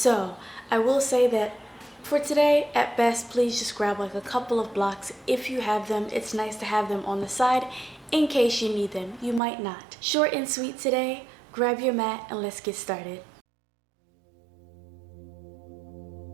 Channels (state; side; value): drops out; left; at 9.4 s